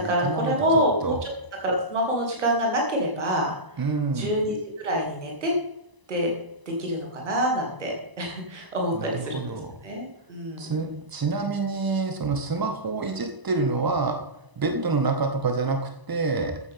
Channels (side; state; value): left; late; 1.0 ms